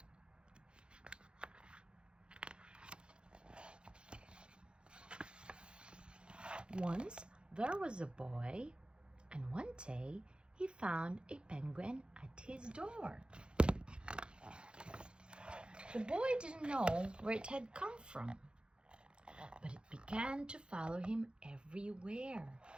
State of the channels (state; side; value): late; left; 0.053 ms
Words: Once there was a boy, and one day he found a penguin at his door. The boy didn't know where it had come from, but it began to follow him everywhere.